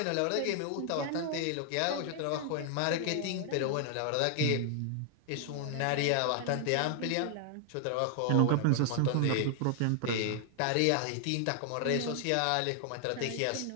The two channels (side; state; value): both; different; correlation 0.00